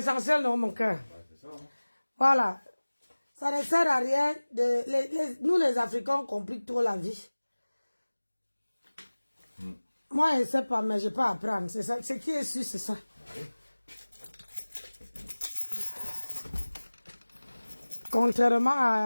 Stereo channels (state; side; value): inverted; both; correlation -1.00